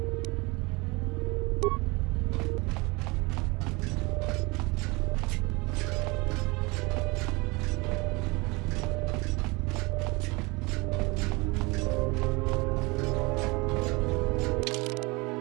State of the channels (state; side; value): quieter; left; 25.6 dB